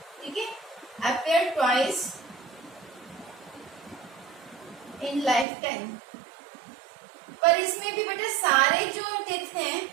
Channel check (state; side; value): drops out; left; at 5.5 s